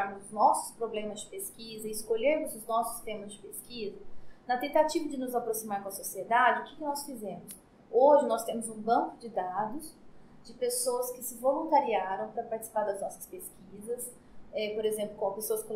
nossos problemas de pesquisa e escolhermos os nossos temas de pesquisa, na tentativa de nos aproximar com a sociedade, o que nós fizemos? Hoje nós temos um banco de dados de pessoas que se voluntariaram para participar das nossas pesquisas. Por exemplo, com pessoas com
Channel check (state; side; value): identical; both; correlation 1.00